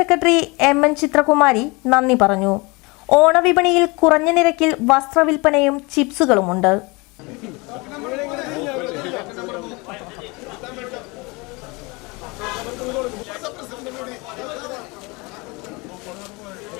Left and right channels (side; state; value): right; quieter; 26.2 dB